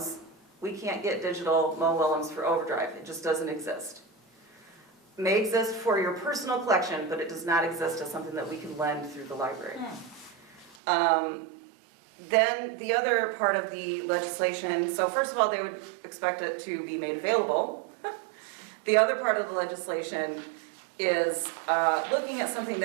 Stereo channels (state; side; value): drops out; left; at 10.8 s